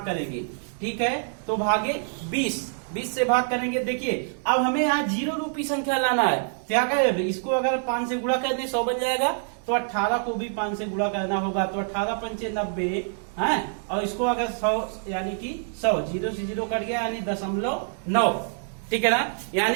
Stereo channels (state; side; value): silent; left; digital silence